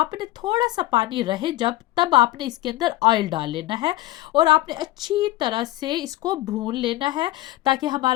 थोड़ा सा पानी रहे, जब तब आपने इसके अंदर ऑयल डाल लेना है और आपने अच्छी तरह से इसको भून लेना है ताकि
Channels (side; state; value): right; quieter; 17.1 dB